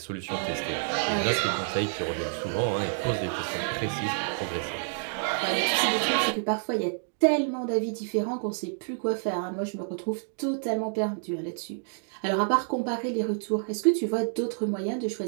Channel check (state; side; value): silent; left; digital silence